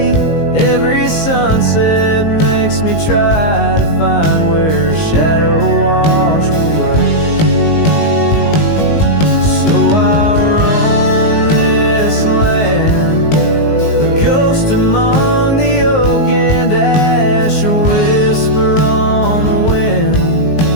Every sunset makes me try to find where his shadow washed away. So I roam this land, a ghost among the oak and ash, a whisper on the wind,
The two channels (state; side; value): late; right; 19 ms